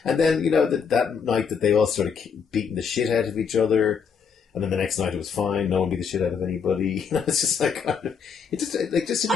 And then, that night that they all started beating the shit out of each other, and then the next night it was fine, no one beat the shit out of anybody. It's just like, it just didn't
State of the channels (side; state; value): right; quieter; 6.4 dB